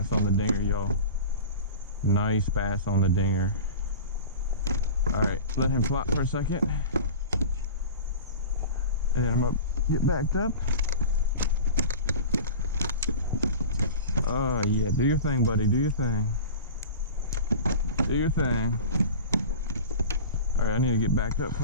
on the dinger, y'all. Nice bass on the dinger. Alright, let him flop for a second. And then I'm gonna get backed up. Oh yeah, do your thing, buddy. Do your thing. Do your thing. Alright, I need to get backed up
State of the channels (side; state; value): both; inverted; correlation -0.34